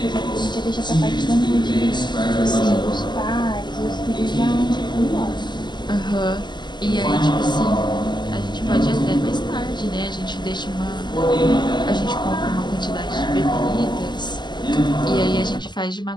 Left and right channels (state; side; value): late; right; 0.21 ms